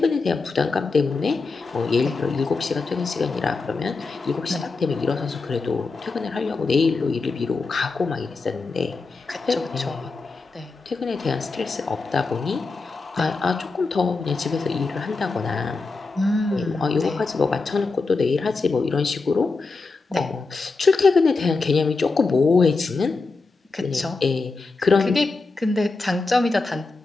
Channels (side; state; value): right; quieter; 3.9 dB